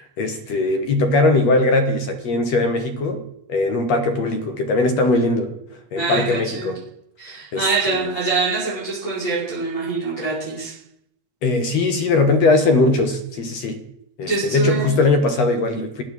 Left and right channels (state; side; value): late; right; 8.3 ms